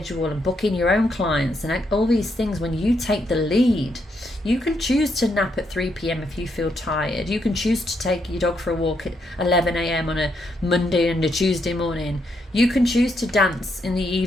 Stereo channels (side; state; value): both; normal; correlation 0.78